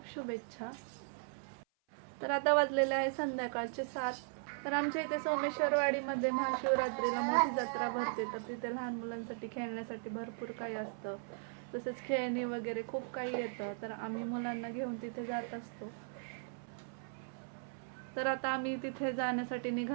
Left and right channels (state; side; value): silent; left; 53 dB below the other